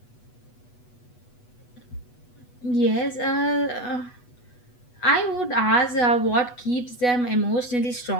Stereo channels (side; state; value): right; late; 8.2 ms